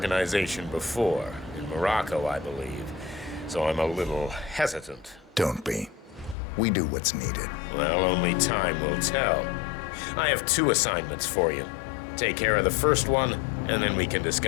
before, in Morocco, I believe, so I'm a little hesitant. Don't be. We do what's needed. Well, only time will tell. I have 2 assignments for you. Take care of the first one, and then we can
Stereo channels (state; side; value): drops out; right; at 6.4 s